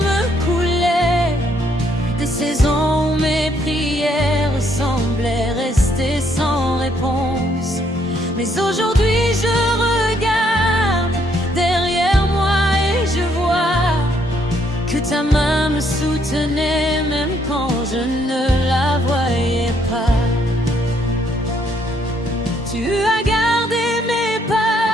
coulaient, des saisons où mes prières semblaient rester sans réponse. Mais aujourd'hui je regarde derrière moi et je vois que ta main me soutenait même quand je ne la voyais pas. Tu as gardé mes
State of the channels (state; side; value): normal; both; correlation 0.70